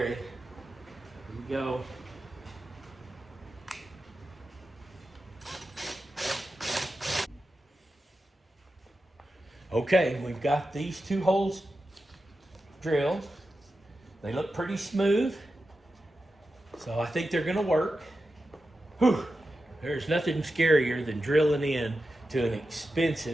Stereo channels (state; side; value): normal; both; correlation 0.91